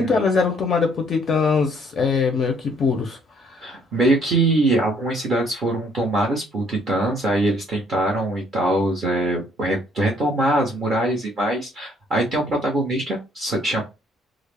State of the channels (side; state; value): both; normal; correlation 0.63